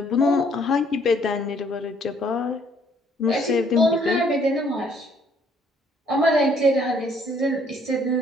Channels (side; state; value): both; normal; correlation 0.64